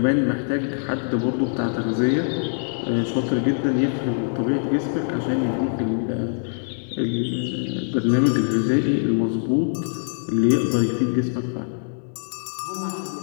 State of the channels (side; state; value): right; silent; 63 dB below the other